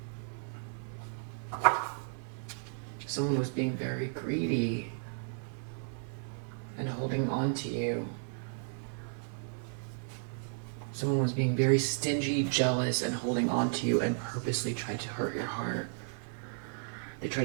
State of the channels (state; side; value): silent; left; 55 dB below the other